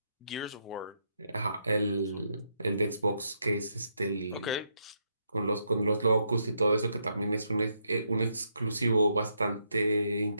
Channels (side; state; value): both; inverted; correlation -0.78